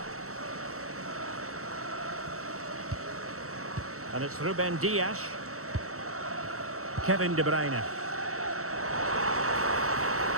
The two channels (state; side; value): late; left; 0.64 ms